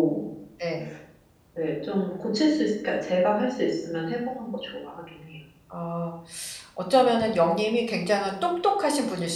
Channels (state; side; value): identical; both; correlation 1.00